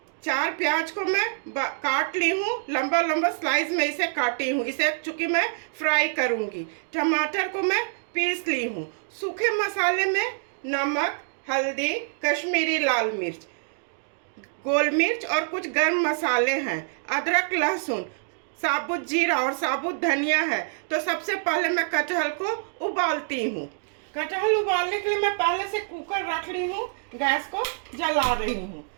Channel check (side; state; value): left; silent; digital silence